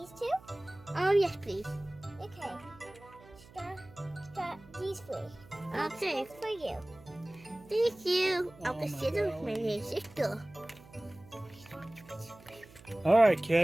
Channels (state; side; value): noise; right; hum, 22 dB below the sound